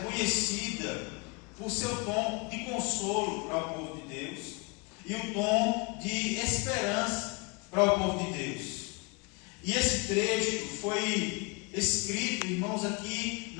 conhecida por seu tom de consolo para o povo de Deus e o tom de esperança para o povo de Deus. E esse trecho foi escrito, irmãos, aqui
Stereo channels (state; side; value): quieter; right; 28.5 dB